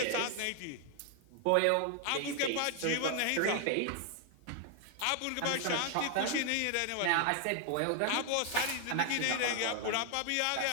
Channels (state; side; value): different; both; correlation 0.00